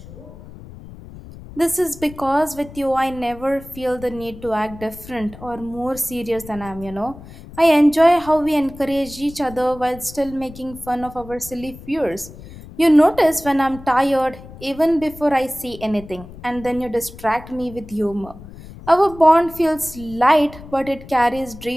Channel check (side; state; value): left; noise; rumble, 17 dB below the sound